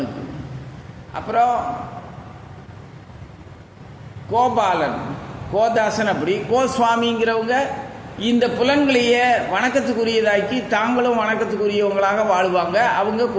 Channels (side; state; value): both; identical; correlation 1.00